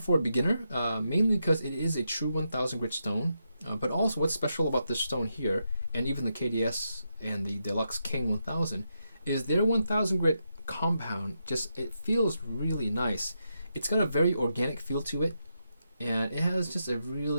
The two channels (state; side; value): inverted; both; correlation -0.83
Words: a beginner, mainly because it is a true 1000 grit stone. But also, what's special about this stone here, and even the KDS and the Deluxe King 1000, is their 1000 grit compound. It feels really nice. It's got a very organic feel to it, and it has just a